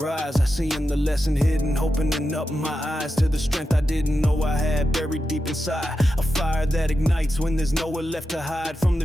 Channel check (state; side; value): normal; both; correlation 0.89